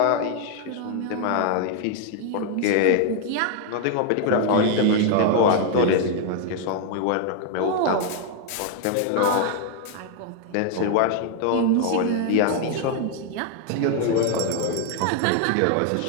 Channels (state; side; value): different; both; correlation 0.00